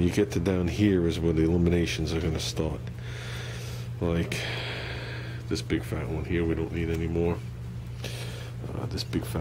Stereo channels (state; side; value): identical; both; correlation 1.00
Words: you get to down here is where the eliminations are going to start. Like this big fat one here, we don't need anymore. This big